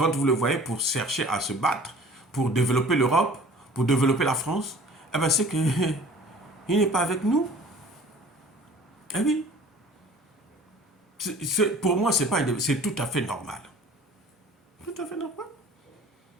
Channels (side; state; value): both; normal; correlation 0.47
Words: vous le voyez pour chercher à se battre, pour développer l'Europe, pour développer la France, eh ben c'est qu'il n'est pas avec nous. Eh oui. Pour moi, c'est tout à fait normal. Tout à fait normal.